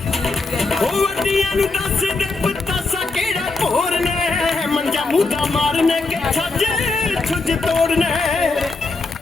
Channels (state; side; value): quieter; right; 3.6 dB